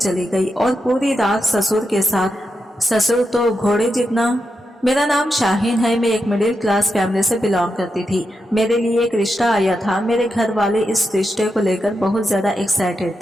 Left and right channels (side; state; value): both; normal; correlation 0.86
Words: गई और पूरी रात ससुर के साथ। ससुर तो घोड़े जितना। मेरा नाम शाहीन है। मैं एक मिडिल क्लास फैमिली से बिलोंग करती थी। मेरे लिए एक रिश्ता आया था। मेरे घर वाले इस रिश्ते को लेकर बहुत ज्यादा एक्साइटेड